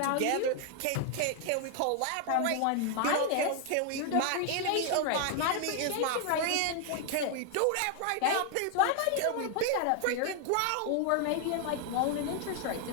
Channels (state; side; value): different; both; correlation 0.00